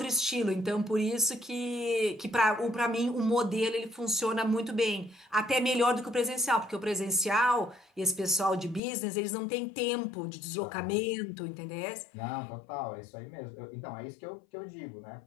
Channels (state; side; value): drops out; right; at 8.8 s